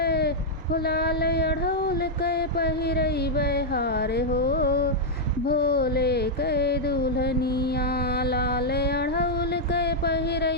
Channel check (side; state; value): both; normal; correlation -0.05